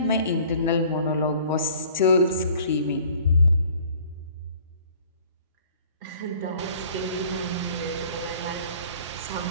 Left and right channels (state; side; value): inverted; both; correlation -0.52